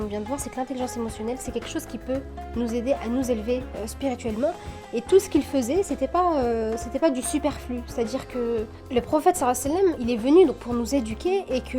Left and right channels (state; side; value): identical; both; correlation 1.00